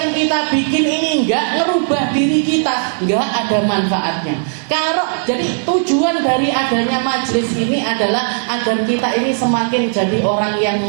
kita bikin ini enggak ngerubah diri kita, enggak ada manfaatnya. Jadi tujuan dari adanya majelis ini adalah agar kita ini semakin jadi orang yang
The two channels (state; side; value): silent; left; digital silence